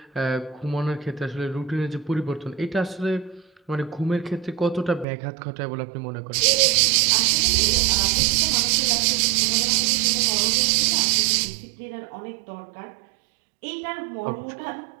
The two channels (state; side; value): drops out; left; at 5.1 s